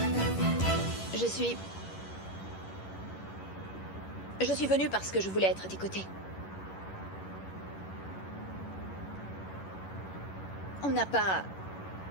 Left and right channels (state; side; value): late; right; 11 ms